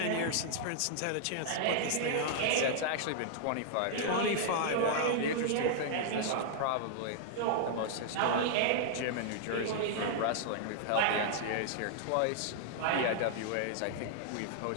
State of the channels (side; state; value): both; different; correlation -0.01